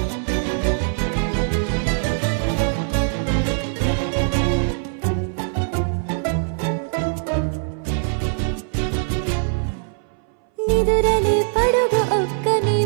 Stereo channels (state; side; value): silent; left; 61 dB below the other